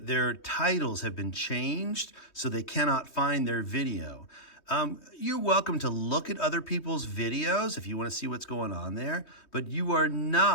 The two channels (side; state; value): right; late; 3.2 ms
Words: their titles have been changed so they cannot find their video. You're welcome to look at other people's videos if you want to see what's going on there, but you are